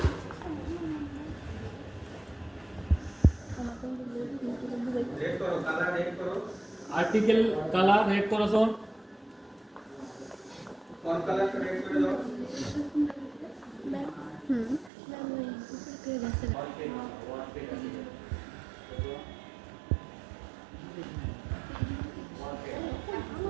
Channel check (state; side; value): drops out; left; at 14.9 s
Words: রেড করো কালার রেড করো আর্টিকেল কালার রেড করছো কোন কালার রেড করে দাও